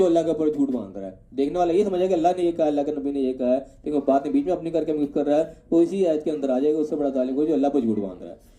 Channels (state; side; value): identical; both; correlation 1.00